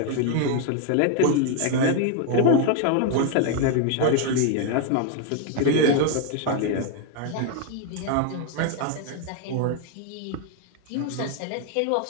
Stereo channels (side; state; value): both; different; correlation 0.00